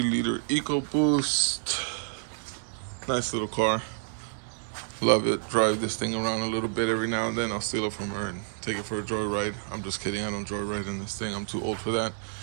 liter EcoBoost. Nice little car. Love it. Drive this thing around a little bit every now and then. I'll steal it from her and take it for a joyride. I'm just kidding. I don't joyride in this thing. I'm too old for that.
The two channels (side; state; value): left; silent; 59 dB below the other